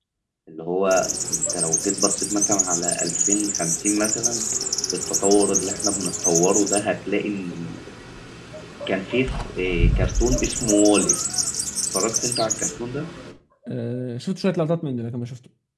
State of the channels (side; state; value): both; identical; correlation 1.00